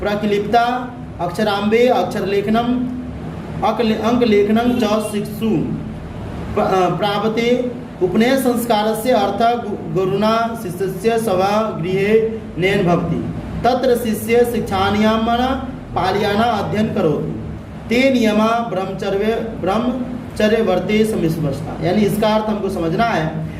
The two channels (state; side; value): identical; both; correlation 1.00